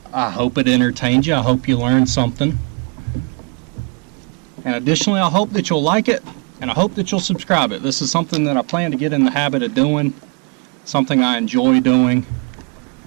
I hope it entertained you. I hope you learned something. And additionally, I hope that you'll like it, and I hope that you'll subscribe it. This is something that I plan to get in the habit of doing, something I enjoy doing,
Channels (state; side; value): quieter; left; 35.6 dB